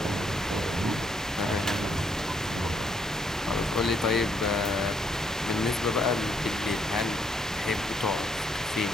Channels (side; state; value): both; normal; correlation 0.72